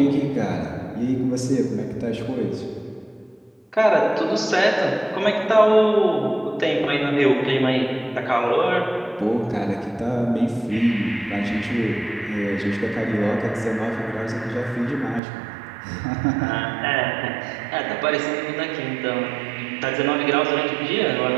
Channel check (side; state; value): left; drops out; at 15.2 s